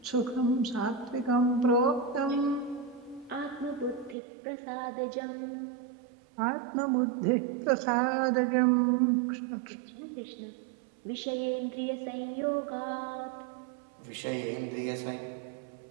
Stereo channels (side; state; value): left; drops out; at 4.2 s